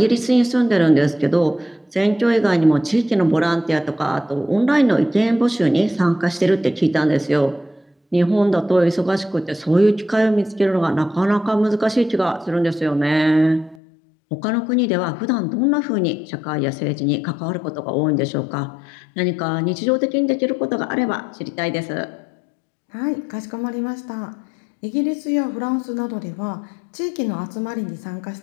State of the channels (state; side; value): drops out; right; at 13.8 s